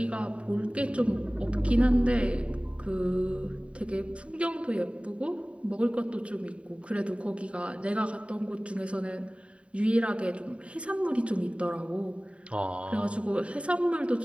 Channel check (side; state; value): left; late; 0.061 ms